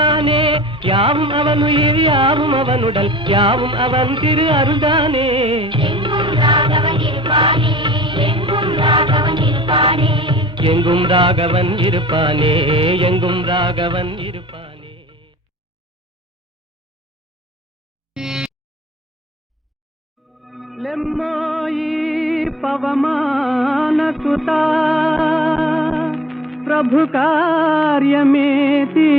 யாவும் அவன் உயிர் யாவும் அவனுடல், யாவும் அவன் திரு அருள்தானே. எங்கும் ராகவன் இருப்பானே, எங்கும் ராகவன் இருப்பானே, எங்கும் ராகவன் இருப்பானே, எங்கும் ராகவன் இருப்பானே. லெம்மாயி పవమాన సుతా ప్రభు కార్యమే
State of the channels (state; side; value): normal; both; correlation 0.49